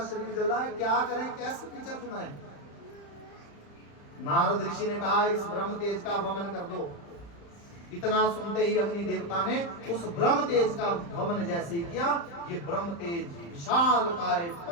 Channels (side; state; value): right; late; 35 ms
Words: शरीर जल रहा है, क्या करें, कैसे पीछा छुड़ाएं? नारद ऋषि ने कहा इस ब्रह्म तेज का वमन कर दो। इतना सुनते ही अग्नि देवता ने उस ब्रह्म तेज का वमन जैसे ही किया, ये ब्रह्म तेज विशालकाय